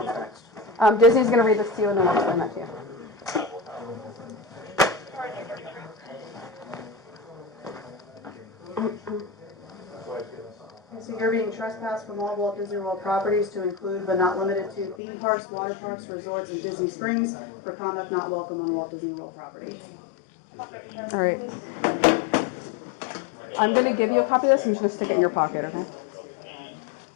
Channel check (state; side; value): drops out; right; at 15.0 s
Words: next? Disney's going to read this to you and then we'll explain that to you. So you're being trespassed from all Walt Disney World properties to include but not limited to theme parks, water parks, resorts, and Disney Springs for conduct not welcome on Walt Disney World property. All right. I'm going to give you a copy of this and you're just going to stick it in your pocket, okay?